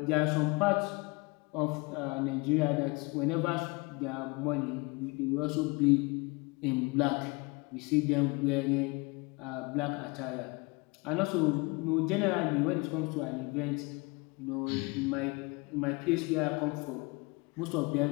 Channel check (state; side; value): quieter; right; 27.1 dB